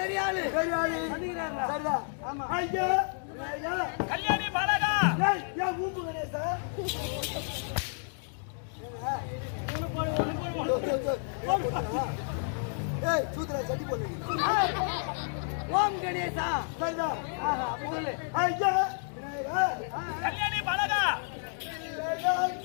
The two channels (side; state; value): right; silent; 57 dB below the other